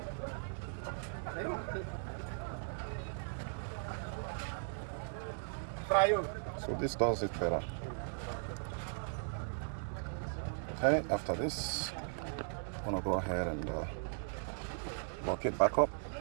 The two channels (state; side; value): silent; left; 52 dB below the other